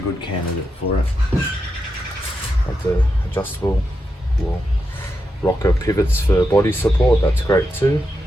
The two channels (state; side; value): normal; both; correlation 0.86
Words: candidate for it. Like the adjustable rocker pivots for body support, that's great too.